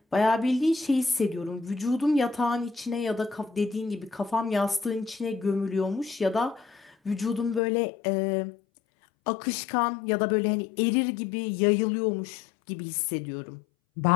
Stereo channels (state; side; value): drops out; right; at 7.6 s